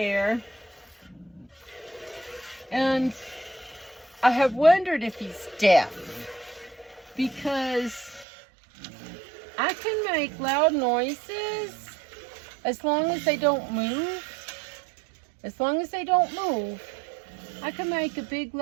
And I have wondered if he's deaf, because I can make loud noises as long as they don't move. As long as they don't move, I can make a big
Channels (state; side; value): drops out; left; at 8.2 s